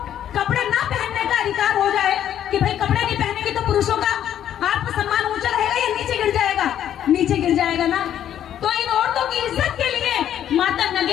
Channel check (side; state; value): right; quieter; 10.5 dB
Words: कपड़े ना पहनने का अधिकार हो जाए कि भाई कपड़े नहीं पहनेंगे तो पुरुषों का आत्मसम्मान ऊंचा रहेगा या नीचे गिर जाएगा? नीचे गिर जाएगा ना। तो इन औरतों की इज्जत के लिए माता